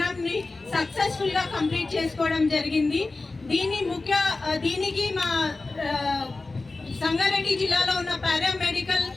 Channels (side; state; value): right; quieter; 3.5 dB